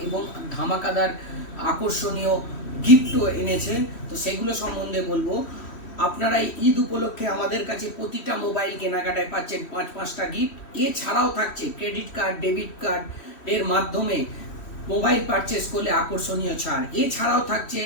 এবং ধামাকাদার আকর্ষণীয় গিফটও এনেছে। তো সেগুলো সম্বন্ধে বলবো। আপনারা ঈদ উপলক্ষে আমাদের কাছে প্রতিটা মোবাইল কেনাকাটায় পাচ্ছেন 5-5টা গিফট। এছাড়াও থাকছে ক্রেডিট কার্ড, ডেবিট কার্ড এর মাধ্যমে মোবাইল পারচেস করলে আকর্ষণীয় ছাড়। এছাড়াও থাকছে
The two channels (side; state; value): right; late; 3.1 ms